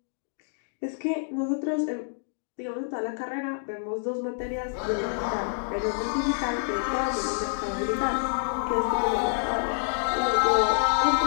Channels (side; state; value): right; silent; digital silence